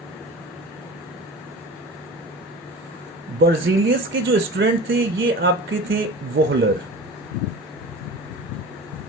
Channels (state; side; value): normal; both; correlation 0.36